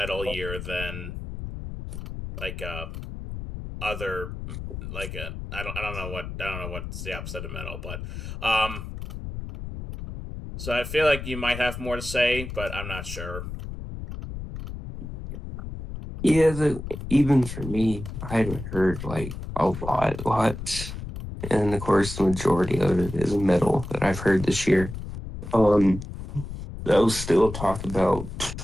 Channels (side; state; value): left; noise; rumble, 8 dB below the sound